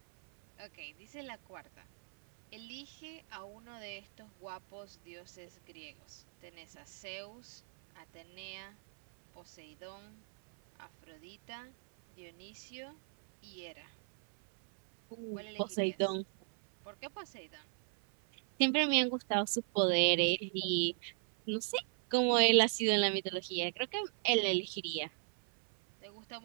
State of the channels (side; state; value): left; silent; 53 dB below the other